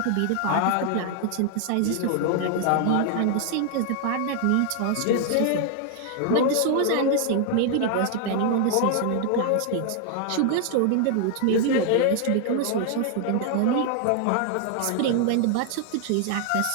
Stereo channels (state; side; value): different; both; correlation 0.00